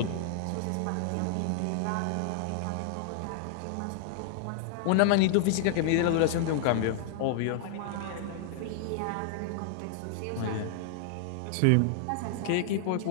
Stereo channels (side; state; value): both; different; correlation -0.01